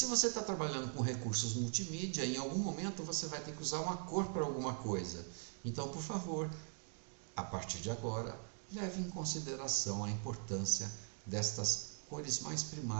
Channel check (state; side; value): silent; left; 50 dB below the other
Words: você está trabalhando com recursos multimídia, em algum momento você vai ter que usar uma cor para alguma coisa. Então, por favor, a partir de agora, leve em consideração a importância destas cores mais